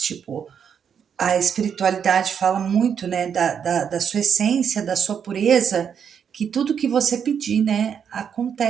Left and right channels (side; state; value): left; quieter; 7.6 dB